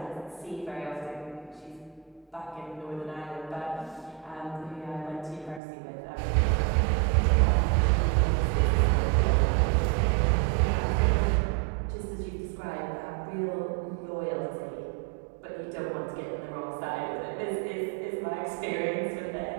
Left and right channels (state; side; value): drops out; left; at 5.6 s